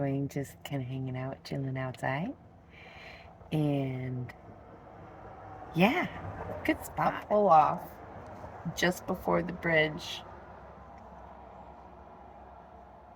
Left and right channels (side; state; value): both; identical; correlation 1.00